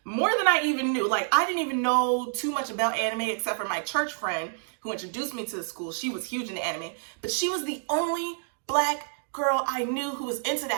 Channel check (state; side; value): silent; left; digital silence